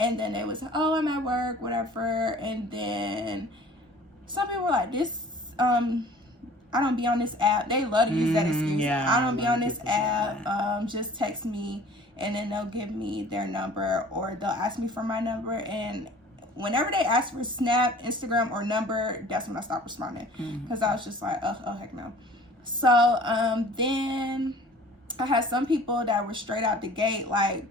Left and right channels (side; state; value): both; normal; correlation 0.48